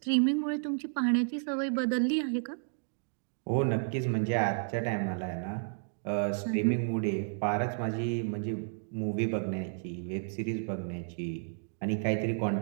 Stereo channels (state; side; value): silent; left; digital silence